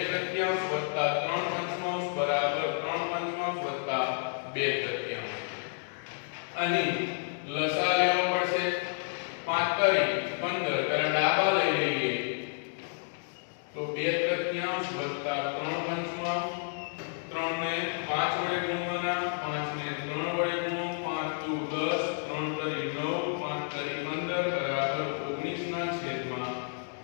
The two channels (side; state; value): right; silent; digital silence